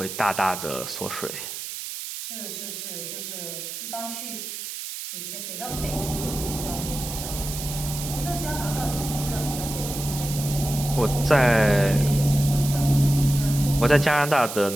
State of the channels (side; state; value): right; noise; hiss, 8 dB below the sound